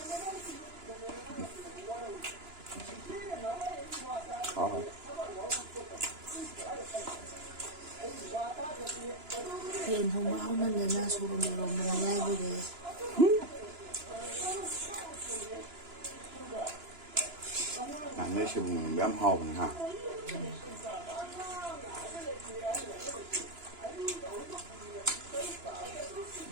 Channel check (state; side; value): late; left; 2.9 ms